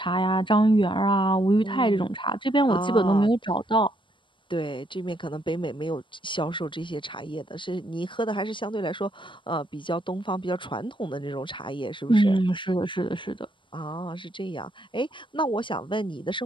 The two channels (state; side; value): late; right; 0.24 ms